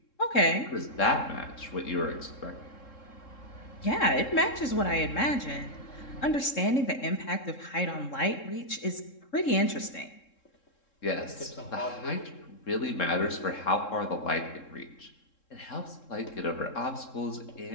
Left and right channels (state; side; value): late; right; 3.7 ms